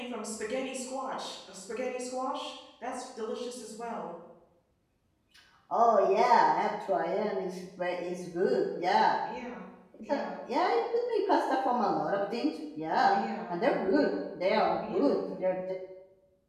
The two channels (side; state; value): both; identical; correlation 1.00